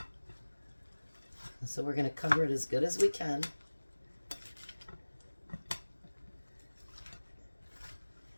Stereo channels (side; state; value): both; inverted; correlation -1.00